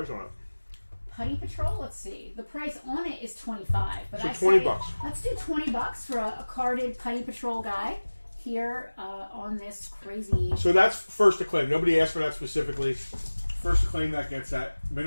on it? Putty Patrol. Let's see. The price on it is $25, but So I $20. say let's do $20 for a carded Putty Patrol guy here on this crazy. So that's first to claim. Nobody asked for that specifically. First to claim that gets that. Min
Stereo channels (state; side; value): inverted; both; correlation -1.00